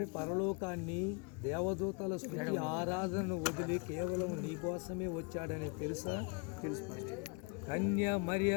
పరలోకాన్ని, దేవదూతల స్తుతి ఆరాధనను వదిలి కేవలం నీ కోసమే వచ్చాడని తెలుసా? కన్య మరియ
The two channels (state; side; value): quieter; right; 32.7 dB